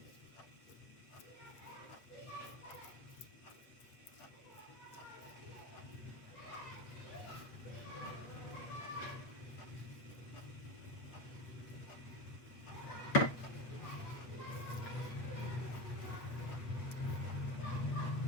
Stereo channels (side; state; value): right; late; 8.3 ms